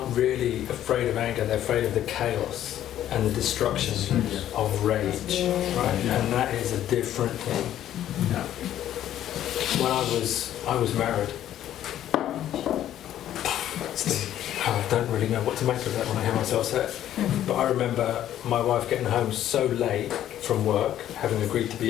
really afraid of anger, they're afraid of the chaos and the destruction of rage. Right? And that is a different thing. When I was married, I don't really know what to make of that when I hear myself say it. But I remember my wife getting home so late from work, having agreed to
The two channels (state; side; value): quieter; right; 11.8 dB